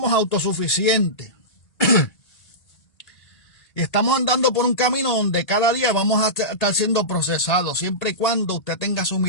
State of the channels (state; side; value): late; right; 1.8 ms